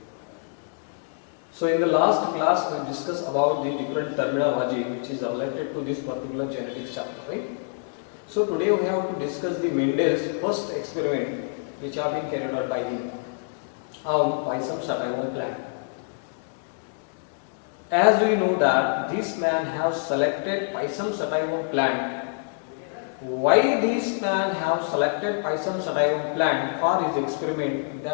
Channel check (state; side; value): silent; right; digital silence